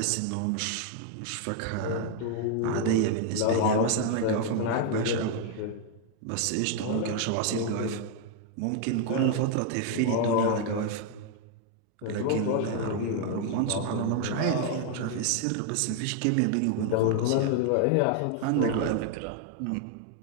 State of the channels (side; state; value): both; different; correlation 0.00